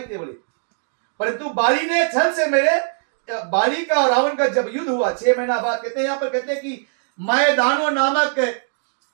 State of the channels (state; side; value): silent; left; digital silence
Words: थे बोले, परंतु बाली ने छल से मेरे बाली का और रावण का जब युद्ध हुआ 6 महीना बाद, कहते हैं यहाँ पर कहते हैं कि